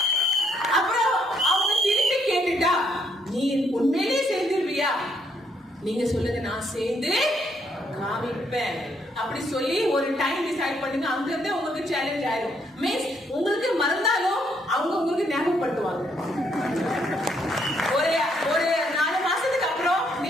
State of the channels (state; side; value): normal; both; correlation 0.72